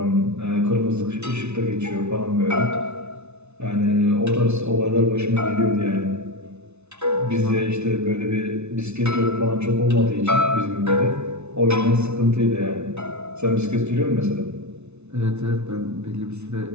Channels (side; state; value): left; late; 0.81 ms